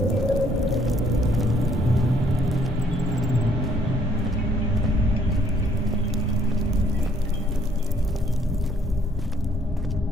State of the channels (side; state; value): both; normal; correlation 0.65